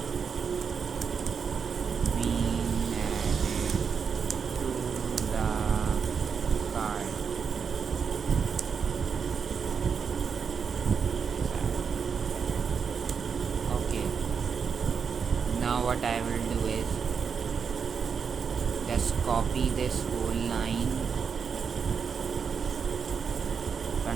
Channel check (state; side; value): quieter; left; 6.3 dB